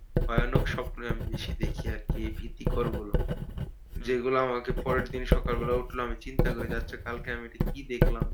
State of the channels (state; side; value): identical; both; correlation 1.00